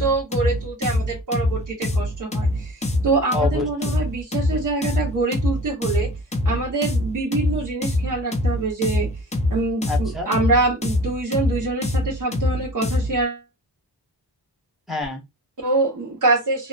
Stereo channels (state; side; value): normal; both; correlation 0.36